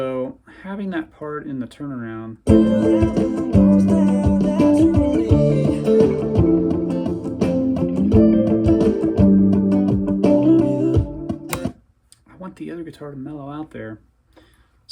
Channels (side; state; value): both; identical; correlation 1.00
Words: having that part in the turnaround, I want the other guitar to mellow out there.